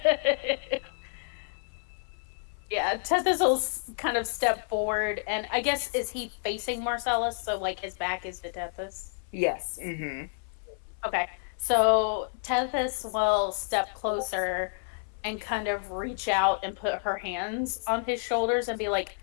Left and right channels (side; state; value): right; silent; 58 dB below the other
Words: Yeah, Tethys will kind of step forward, and I guess, is he facing Marcellus, so like his back is to Tethys? Yes. Mm-hmm. Okay, so Tethys will step closer and kind of reach out and put her hands on his shoulders and be like,